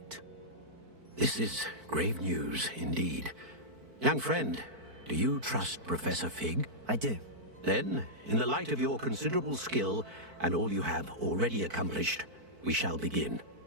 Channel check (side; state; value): left; late; 4.5 ms